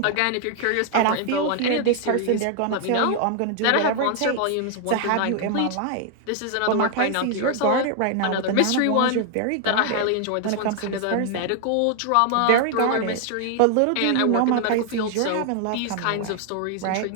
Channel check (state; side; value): different; both; correlation 0.00